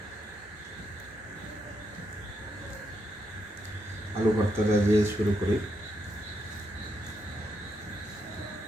আলু ভর্তাটা দিয়ে শুরু করি।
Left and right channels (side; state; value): both; normal; correlation 0.80